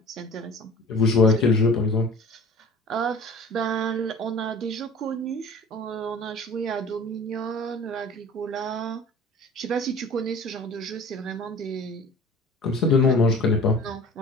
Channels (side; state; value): both; normal; correlation 0.43